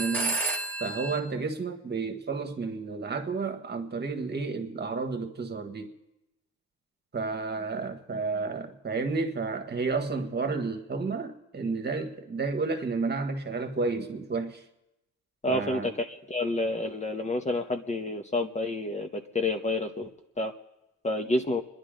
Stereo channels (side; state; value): both; normal; correlation 0.38